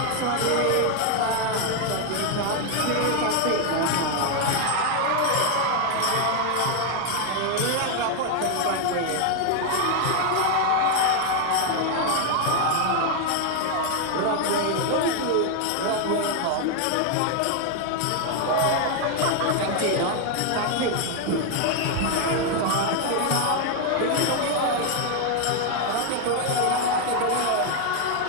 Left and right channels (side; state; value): both; different; correlation 0.01